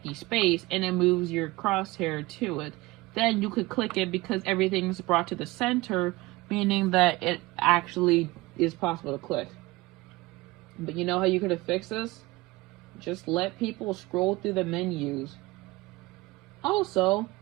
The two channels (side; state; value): left; quieter; 20.9 dB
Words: space, and it moves your crosshair to it. Then you could click it because everything's brought to the center, meaning that it actually is possible to click. But you know how you could have fixed this? Just let people scroll through the menus. Also,